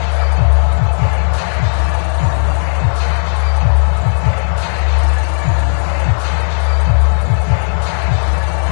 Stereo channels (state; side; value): silent; right; digital silence